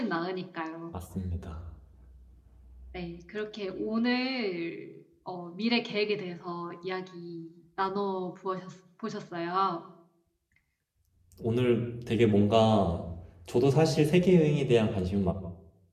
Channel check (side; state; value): both; identical; correlation 1.00